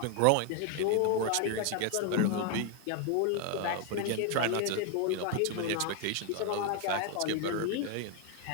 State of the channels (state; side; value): different; both; correlation 0.01